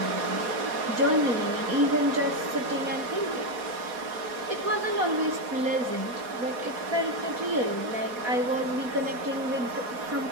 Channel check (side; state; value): left; late; 4.2 ms